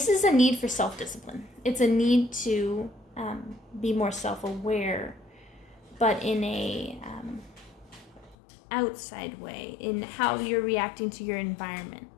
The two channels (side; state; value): right; drops out; at 8.3 s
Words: is a need for self-discipline. It's a need to be more self-aware, but in a outside way in how you're reacting to your environment.